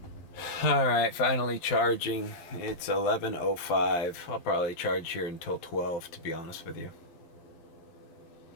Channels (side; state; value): right; late; 12 ms